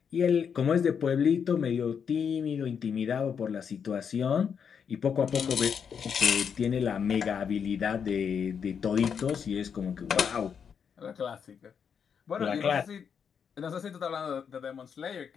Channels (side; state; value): right; quieter; 7.1 dB